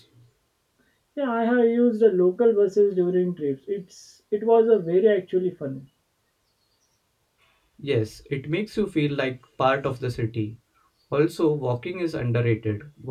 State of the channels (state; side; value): identical; both; correlation 1.00